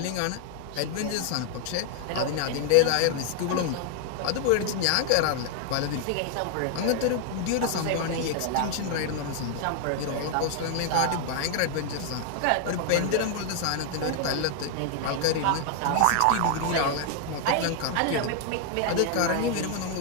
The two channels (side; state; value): both; different; correlation 0.00